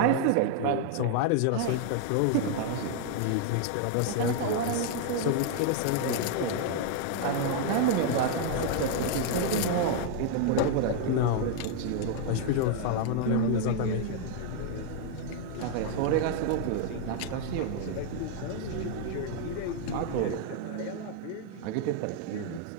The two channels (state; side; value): different; both; correlation 0.00